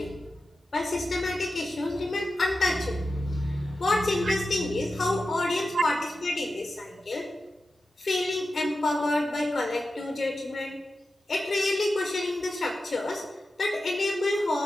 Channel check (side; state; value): both; normal; correlation 0.92